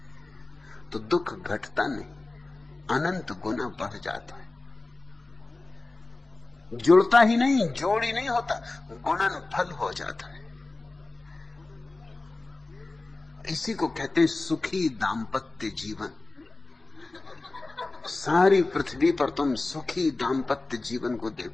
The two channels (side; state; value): right; quieter; 3.2 dB